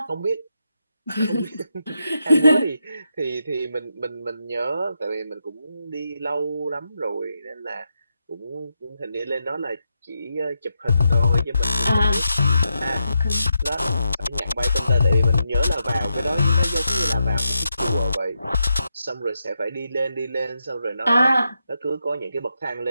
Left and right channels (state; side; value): inverted; both; correlation -0.85